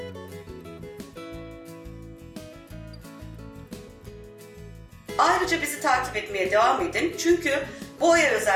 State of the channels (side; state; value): both; identical; correlation 1.00